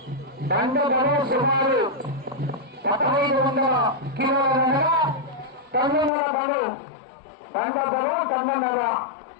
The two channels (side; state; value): right; drops out; at 6.1 s